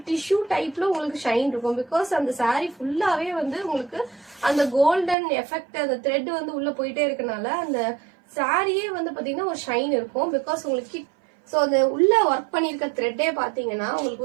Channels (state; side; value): drops out; left; at 5.2 s